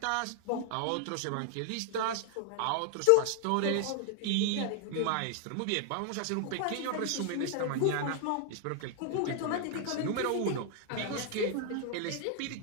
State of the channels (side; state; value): both; different; correlation 0.00